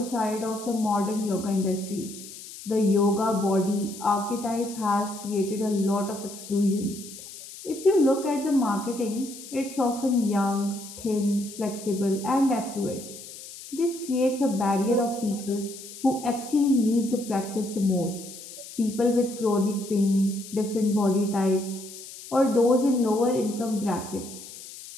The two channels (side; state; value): left; noise; hiss, 14 dB below the sound